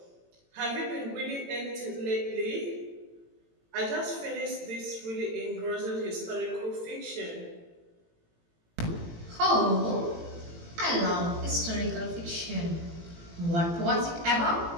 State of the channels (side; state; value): left; late; 18 ms